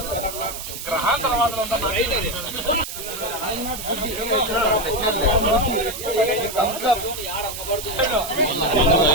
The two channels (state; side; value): noise; right; hiss, 9 dB below the sound